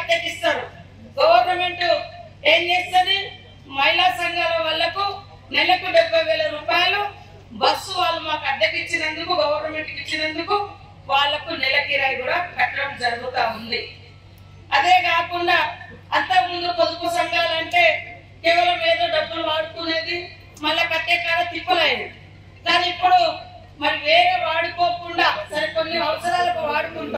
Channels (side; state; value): both; identical; correlation 1.00